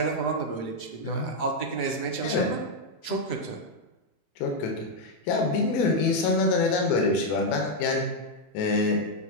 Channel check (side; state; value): right; late; 18 ms